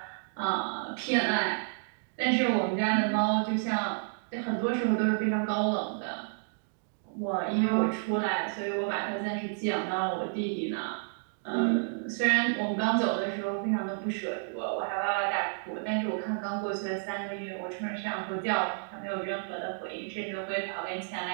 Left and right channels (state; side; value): silent; left; digital silence